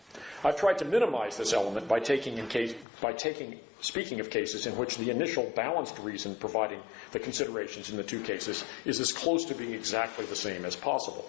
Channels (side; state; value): right; drops out; at 2.9 s